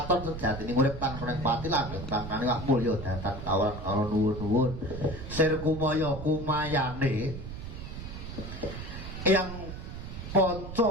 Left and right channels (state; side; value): noise; right; rumble, 9 dB below the sound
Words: sejatine urip tan kurang pati langgeng kang kaniwah mulya datan kawan karo nuwun-nuwun. Sir kumaya kumayane yang Panca